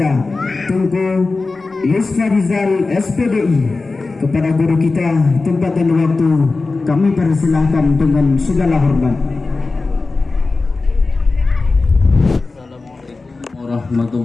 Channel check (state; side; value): quieter; right; 3.7 dB